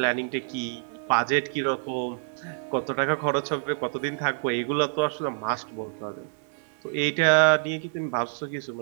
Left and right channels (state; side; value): silent; left; digital silence